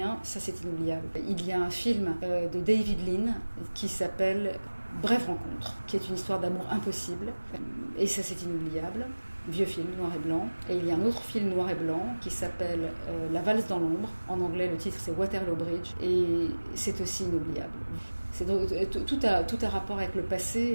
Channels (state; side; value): inverted; both; correlation -1.00